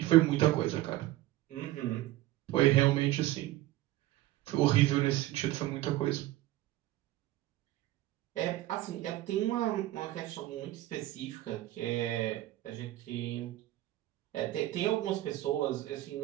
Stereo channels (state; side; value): quieter; left; 16.0 dB